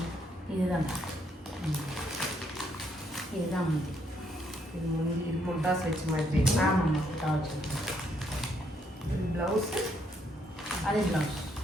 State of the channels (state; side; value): normal; both; correlation 0.72